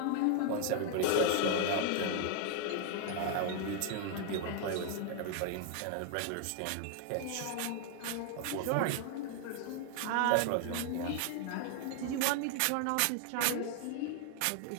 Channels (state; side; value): different; both; correlation 0.00